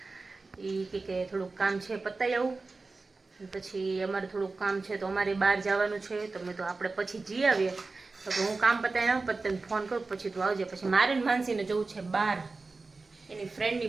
એ કે થોડુંક કામ છે પતાવી આવું, પછી અમારે થોડુંક કામ છે તો અમારે બહાર જવાનું છે. તો મેં તો આપણે પછી જઈ આવીએ. તો હું કામ પતાવી આવું, પછી તને ફોન કરું, પછી તું આવજે. પછી મારે ને માનસીને જવું છે બહાર. એની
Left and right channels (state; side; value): quieter; left; 3.8 dB